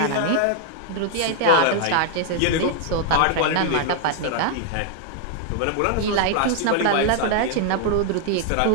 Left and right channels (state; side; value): different; both; correlation 0.00